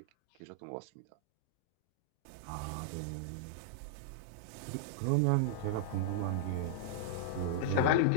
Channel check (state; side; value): different; both; correlation -0.02